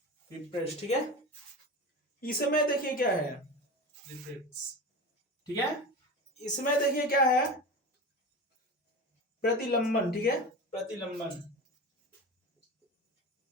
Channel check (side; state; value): both; normal; correlation 0.28